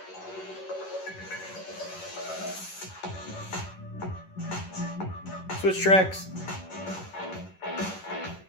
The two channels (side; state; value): right; late; 11 ms